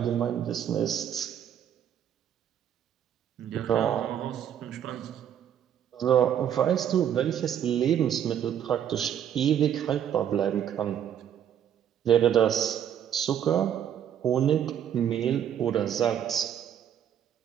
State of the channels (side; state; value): left; quieter; 9.6 dB